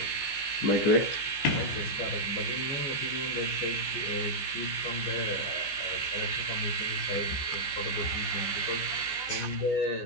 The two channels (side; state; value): right; late; 15 ms